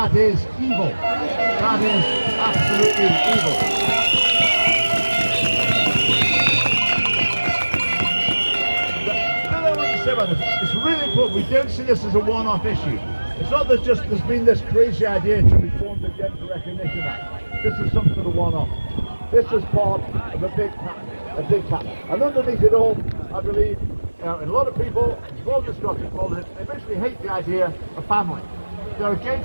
is evil. That is absolutely evil. It's really important. We don't see this as a one-off issue. It's not that there's been this crazy idea to reform the Gender Recognition Act. This is some sort of one-off. This is part of a big pattern. And underneath it all, I believe, a lot of people involved in Scottish politics, they basically hate the idea of family. They're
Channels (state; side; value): inverted; both; correlation -1.00